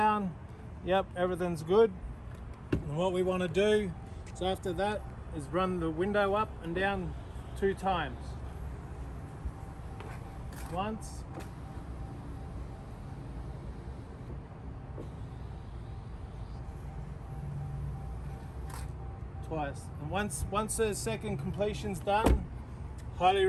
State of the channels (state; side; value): identical; both; correlation 1.00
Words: Yep, everything's good. And what we want to do is after that is run the window up and down 2 times. Once. Twice. And once the second completion's done, highly